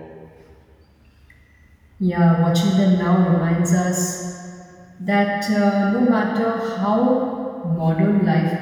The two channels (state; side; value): identical; both; correlation 1.00